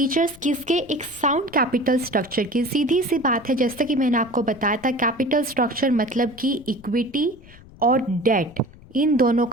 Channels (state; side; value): noise; left; rumble, 22 dB below the sound